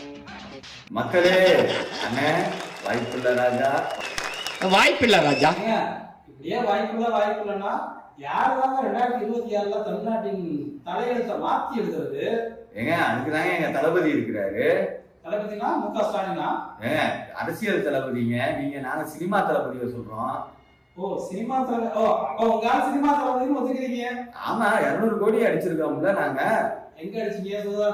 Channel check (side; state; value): both; identical; correlation 1.00